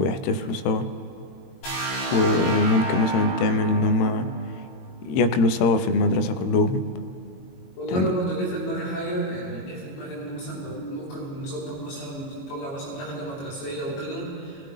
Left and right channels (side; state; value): right; late; 22 ms